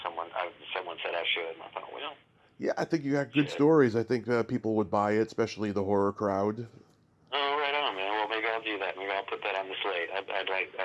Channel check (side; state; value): both; identical; correlation 1.00